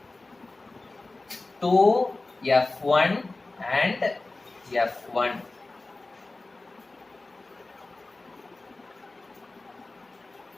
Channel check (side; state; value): right; quieter; 3.2 dB